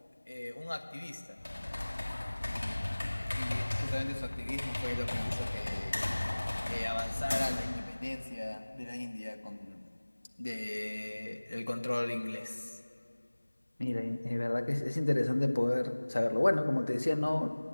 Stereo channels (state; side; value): inverted; both; correlation -1.00